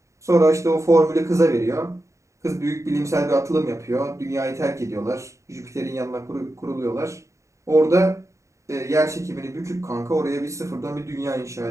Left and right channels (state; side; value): late; left; 0.15 ms